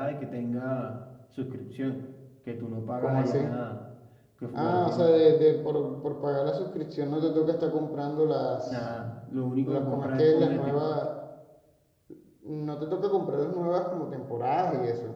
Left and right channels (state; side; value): identical; both; correlation 1.00